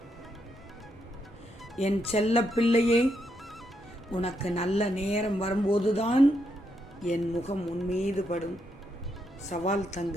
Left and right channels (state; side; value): normal; both; correlation 0.79